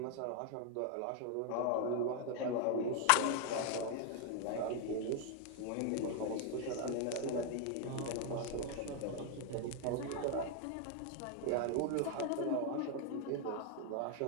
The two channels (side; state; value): both; different; correlation 0.00